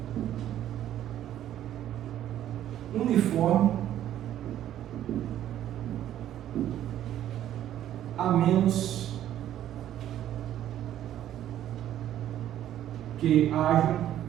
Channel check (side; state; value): left; quieter; 11.8 dB